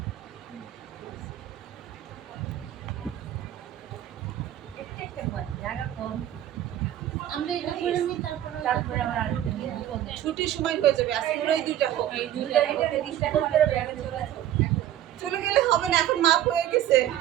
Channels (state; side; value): quieter; left; 12.0 dB